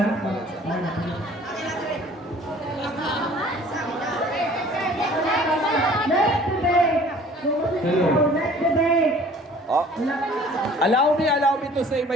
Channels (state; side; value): normal; both; correlation 0.51